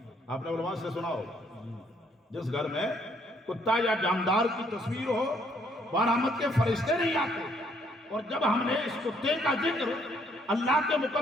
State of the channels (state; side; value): normal; both; correlation 0.68